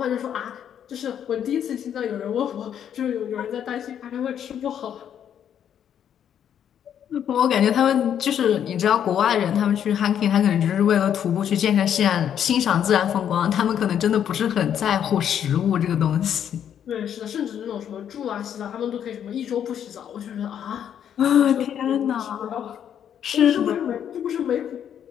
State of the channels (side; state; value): right; quieter; 9.2 dB